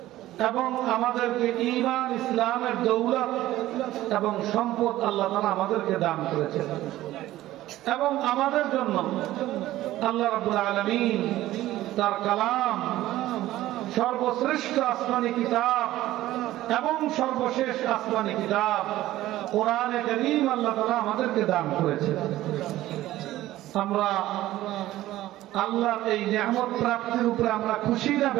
এবং আমাদেরকে ঈমান ইসলামের দৌলত এবং সম্পদ আল্লাহ তাআলা আমাদেরকে দান করেছেন এবং আমাদের জন্য আল্লাহ রাব্বুল আলামিন তার কালাম সর্বশ্রেষ্ঠ আসমানী কিতাব এবং সর্বশেষ আসমানী কিতাব কোরআনে কারীম আল্লাহ তাআলা আমাদেরকে দান করেছেন। আমরা আল্লাহর এই নিয়ামত প্রাপ্তির উপরে আমরা খুশি না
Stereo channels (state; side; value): quieter; left; 15.3 dB